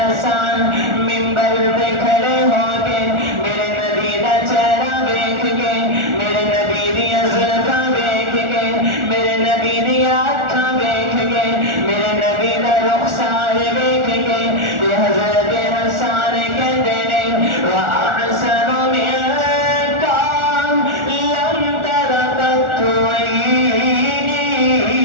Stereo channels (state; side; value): late; left; 1.4 ms